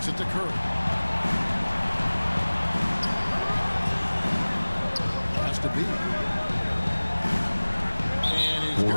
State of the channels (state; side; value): inverted; both; correlation -1.00